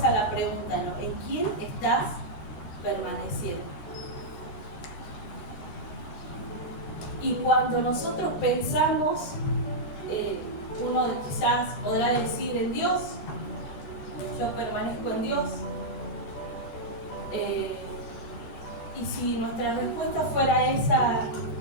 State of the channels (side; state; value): right; late; 13 ms